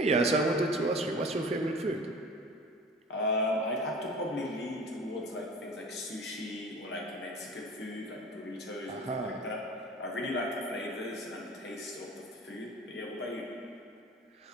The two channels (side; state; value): both; normal; correlation 0.41